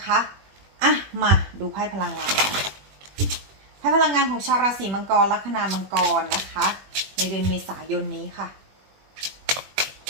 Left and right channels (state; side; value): late; left; 21 ms